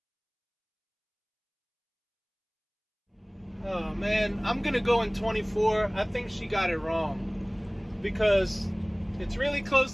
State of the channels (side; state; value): both; identical; correlation 1.00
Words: Oh man, I'm gonna go in 24. I think she got it wrong because it's really